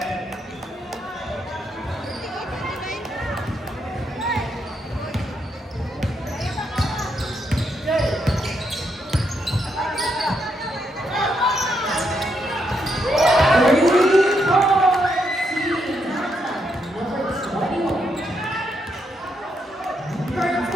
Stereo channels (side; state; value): both; normal; correlation 0.78